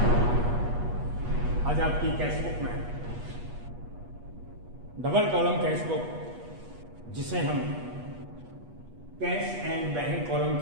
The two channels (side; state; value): left; late; 8.3 ms